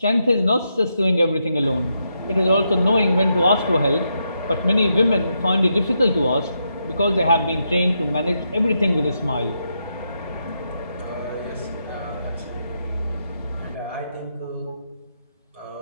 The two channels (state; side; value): inverted; both; correlation -0.82